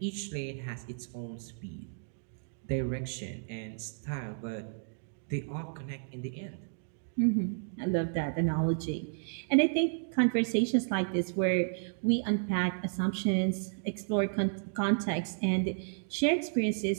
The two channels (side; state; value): left; silent; digital silence